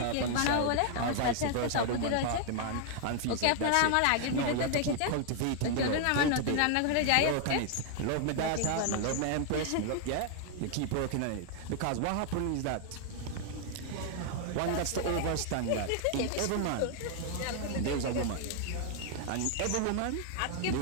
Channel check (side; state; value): both; different; correlation 0.00